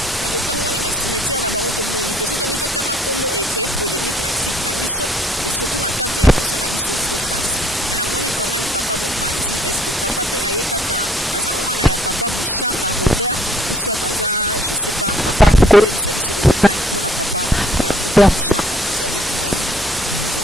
Mais to tambo na ba cimetière na bango to monité. Surtout bito tanga kombo et créer polémique na site na biso et surtout na cadre émission na biso vraie face. Mais na moni quand même papa Mopanzi, est-ce que papa pe aye kaka aza mwana ya papa Bouchanga Robert ou soit aza je sais pas papa ko ebisa biso ozotani pona papa Robert Bouchanga nazaleki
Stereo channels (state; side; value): normal; both; correlation 0.61